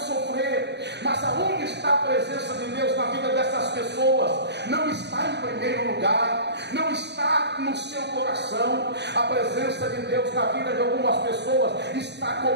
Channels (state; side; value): late; left; 0.50 ms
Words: Mas aonde está a presença de Deus na vida dessas pessoas? Não está em primeiro lugar, não está no seu coração. A presença de Deus na vida de algumas pessoas está